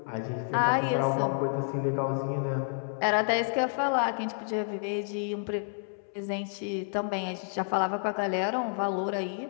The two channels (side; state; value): right; silent; 58 dB below the other